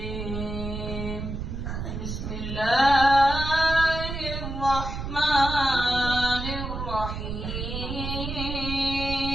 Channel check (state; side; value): noise; right; rumble, 5 dB below the sound